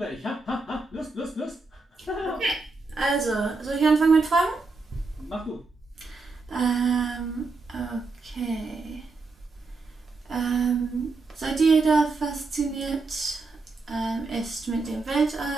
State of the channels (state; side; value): quieter; left; 3.9 dB